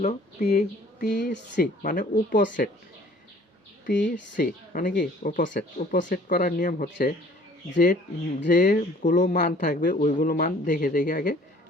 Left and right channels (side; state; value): both; normal; correlation 0.53